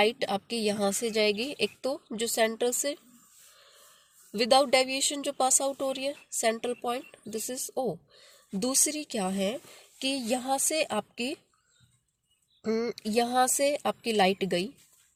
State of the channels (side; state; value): both; identical; correlation 1.00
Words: आपके यहाँ से जाएगी, एक तो जो सेंटर से विदाउट डेविएशन जो पास आउट हो रही है, central point, this is O। दूसरी क्या है कि यहाँ से आपकी लाइट गई